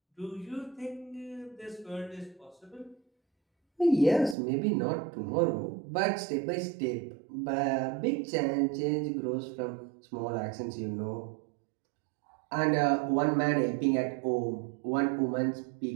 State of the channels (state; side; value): drops out; left; at 4.4 s